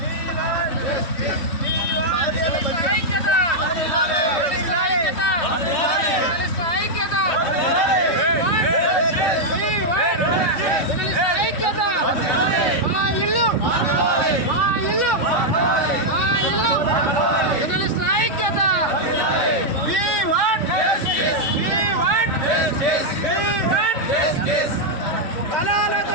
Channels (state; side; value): late; right; 2.9 ms